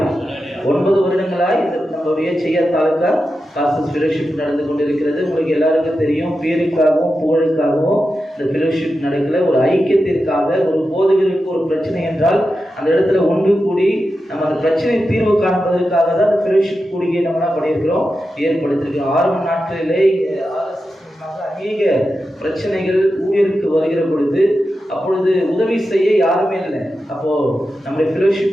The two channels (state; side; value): normal; both; correlation 0.90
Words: 9 வருடங்களாய் நம்மளுடைய செய்யத்தாலுக்கா பாஸ்டர்ஸ் ஃபெலோஷிப் நடந்து கொண்டிருக்கிறது. உங்களுக்கு எல்லாருக்கும் தெரியும், பேருக்காகவும் புகழுக்காகவும் இந்த ஃபெலோஷிப் நடக்கல. ஒரு ஐக்கியத்திற்காக, ஒரு போதகருக்கு ஒரு பிரச்சனை என்றால் அந்த இடத்துல ஒன்று கூடி நம்ம அந்த பிரச்சனை தீர்வு காண்பதற்காக தான் அந்த ஃபெலோஷிப் கூடிய நம்ம என்ன பண்ணியிருக்கிறோம், ஏற்படுத்தியிருக்கிறோம். ஆரம்ப நாட்களிலே அநேக பிரச்சனைகள் ஊழியருக்கு வருகிற பொழுது அப்பொழுது உதவி செய்ய யாருமே இல்லை. அப்போது நம்முடைய